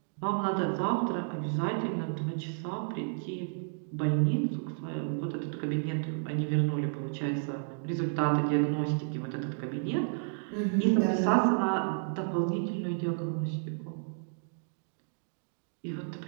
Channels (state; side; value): silent; left; digital silence